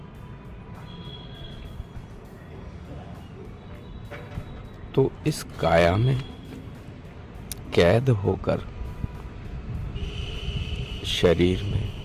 तो इस काया में कैद होकर, शरीर में,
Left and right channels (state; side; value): identical; both; correlation 1.00